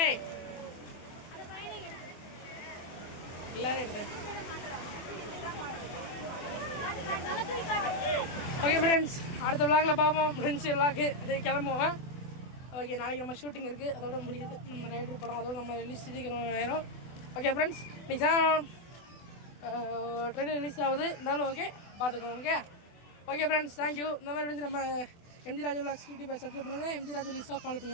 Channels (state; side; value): late; right; 24 ms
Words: எல்லாரும் எடுத்தேன். ஓகே ஃப்ரெண்ட்ஸ், அடுத்த விளாகில் பார்ப்போம். ஃப்ரெண்ட்ஸ் விளாக்கு கிளம்புவோம். ஓகே, நாளைக்கு நம்ம ஷூட்டிங் இருக்குது, அதோட முடியுது நம்ம ரைடர் படம், அதோட நம்ம ரிலீஸ் சீக்கிரம் ஆயிரும். ஓகே ஃப்ரெண்ட்ஸ், இன்னைக்கு ட்ரெயிலர் ரிலீஸ் ஆகுது, இருந்தாலும் ஓகே பார்த்துக்கோங்க. Okay okay friends, thank you. இந்த மாதிரி நம்ம MG Raju vlogs YouTube subscribe பண்ணுங்கள், எம்ஜி ராஜு லிஸ்ட்டாக ஃபாலோ